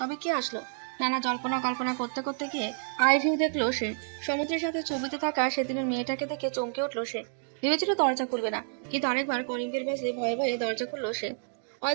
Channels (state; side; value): silent; left; digital silence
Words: কে আসলো? নানা জল্পনা কল্পনা করতে করতে গিয়ে আইভিউ দেখলো সে। সমুদ্রের সাথে ছবিতে থাকা সেদিনের মেয়েটাকে দেখে চমকে উঠলো সে। ভেবেছিল দরজা খুলবে না, কিন্তু আরেকবার কলিং বেল বাজে ভয়ে ভয়ে দরজা খুললো সে।